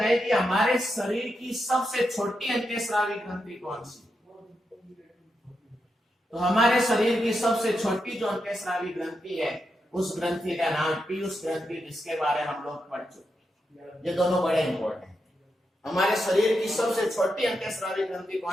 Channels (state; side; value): normal; both; correlation 0.85